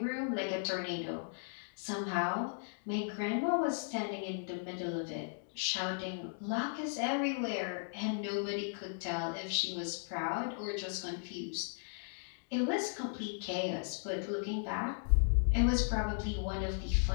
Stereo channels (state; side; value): silent; right; digital silence